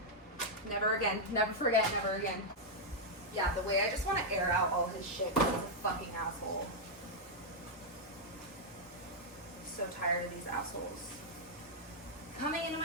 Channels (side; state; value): both; normal; correlation -0.04